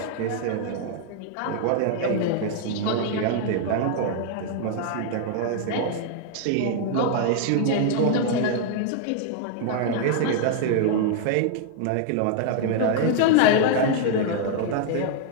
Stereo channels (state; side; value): different; both; correlation 0.00